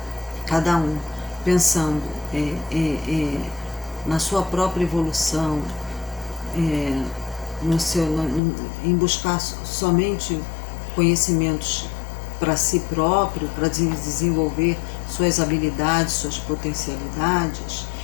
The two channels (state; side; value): drops out; right; at 8.4 s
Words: cada um pensando na sua própria evolução, em buscar somente conhecimentos para si próprio, para desenvolver suas habilidades, suas potencialidades,